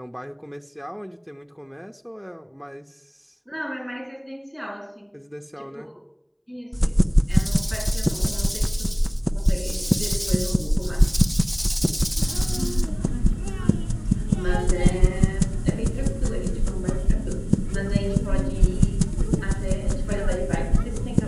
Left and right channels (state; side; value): identical; both; correlation 1.00